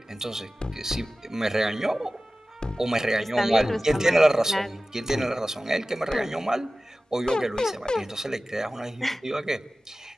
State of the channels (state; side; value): normal; both; correlation 0.96